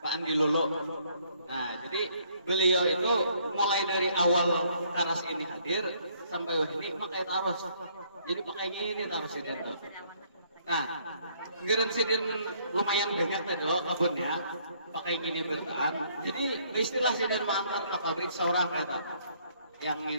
Pak Andi Lolo. Nah, jadi beliau itu mulai dari awal Karas ini hadir sampai ini pakai terus. Jadi pakai ini terus ini. Nah, geren sidin lumayan banyak tadi loh kebunnya, pakai gini bertahan. Jadi istilah sidin mengantar ke pabrik seorang kata yang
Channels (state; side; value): inverted; both; correlation -0.66